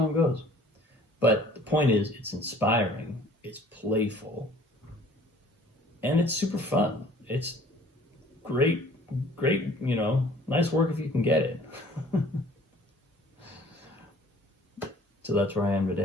goes. But the point is, it's inspiring, it's playful, and it's super fun. It's great, you know, nice work if you can get it. So that's where I am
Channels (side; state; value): both; normal; correlation 0.53